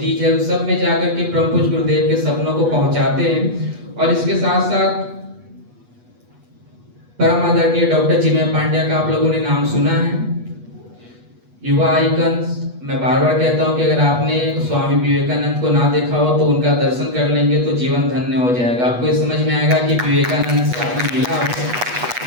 है, उन सब में जाकर के परम पूज्य गुरुदेव के सपनों को पहुंचाते हैं। और इसके साथ साथ परम आदरणीय डॉक्टर चिन्मय पांड्या का आप लोगों ने नाम सुना है, युवा आइकन्स। मैं बार बार कहता हूं कि अगर आपने स्वामी विवेकानंद को ना देखा हो तो उनका दर्शन कर लेंगे तो जीवन धन्य हो जाएगा। आपको ये समझ में आएगा कि विवेकानंद से आपने मिला हो,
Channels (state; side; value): late; left; 8.2 ms